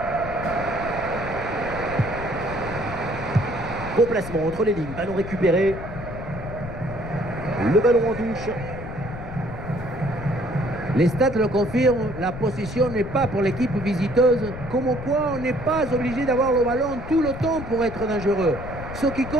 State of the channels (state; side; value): noise; left; rumble, 10 dB below the sound